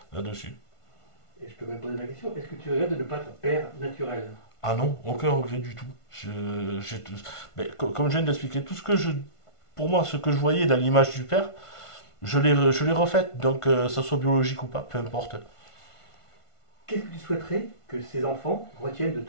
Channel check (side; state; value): right; late; 1.5 ms